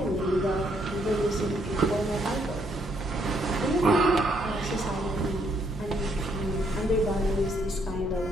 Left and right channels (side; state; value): both; normal; correlation 0.72